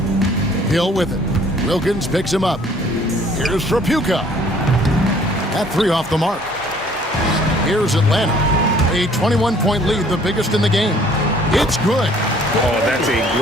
Hill with it. Wilkins picks him up. Here's Trapuka. That 3 off the mark. Here's Atlanta. A 21-point lead, the biggest in the game. It's good. Oh, that's a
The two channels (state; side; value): normal; both; correlation 0.57